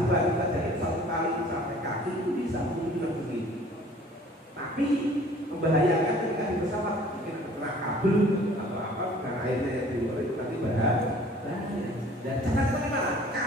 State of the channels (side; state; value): both; normal; correlation 0.51